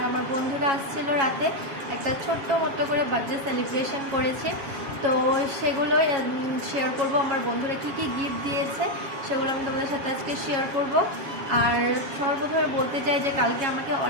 আমার বন্ধুরা আসছিল রাতে, একটা ছোট্ট মতো করে বার্থডে সেলিব্রেশন করেছে। তো সেগুলো শেয়ার করব, আমার বন্ধুরা কী কী গিফট দিয়েছে সেগুলো আমি তোমাদের সাথে আজকে শেয়ার করব। আর সর্বপ্রথমে বলতে চাই যে কালকে আমাকে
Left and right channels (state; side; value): late; left; 7.3 ms